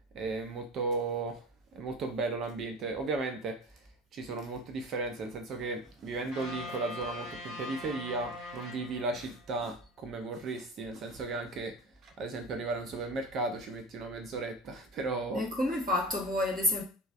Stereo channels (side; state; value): both; normal; correlation 0.33